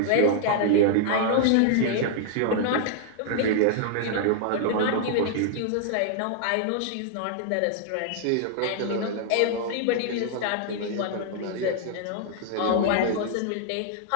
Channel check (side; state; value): both; different; correlation 0.00